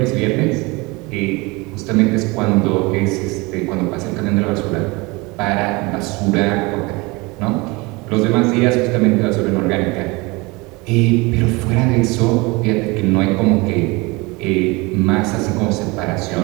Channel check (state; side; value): quieter; left; 25.1 dB